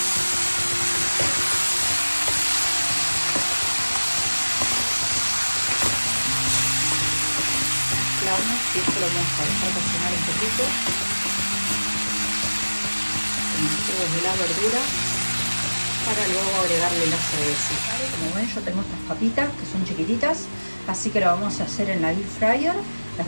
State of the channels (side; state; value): both; inverted; correlation -1.00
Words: Y esto lo vamos a dejar cocinar un poquito con los jugos de la verdura para luego agregarle la cerveza. ¿Vale? Como ven, yo tengo estas papitas que son chiquititas, así que lo vamos a hacer en la air fryer. Las